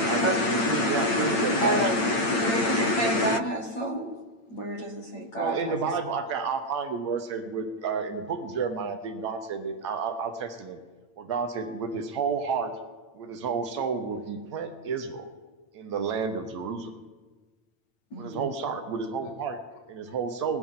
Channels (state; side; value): late; right; 8.8 ms